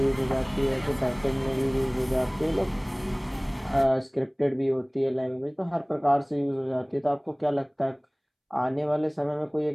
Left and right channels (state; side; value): identical; both; correlation 1.00